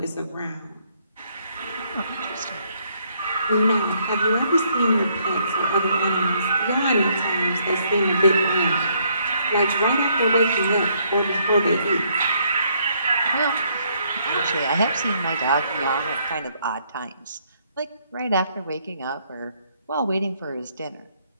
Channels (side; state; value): both; inverted; correlation -0.70